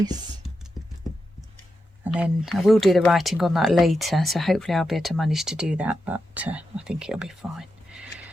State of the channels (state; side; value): normal; both; correlation 0.88